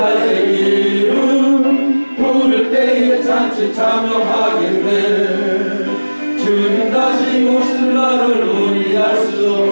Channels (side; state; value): both; inverted; correlation -1.00